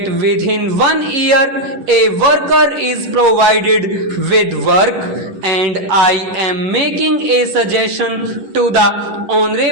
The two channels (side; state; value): left; late; 11 ms